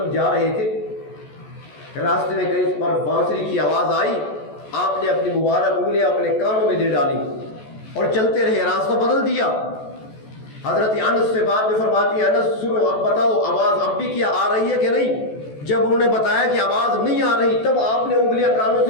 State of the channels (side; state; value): right; late; 14 ms